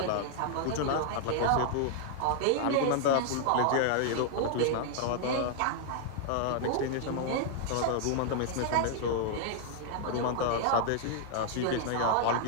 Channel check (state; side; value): different; both; correlation -0.01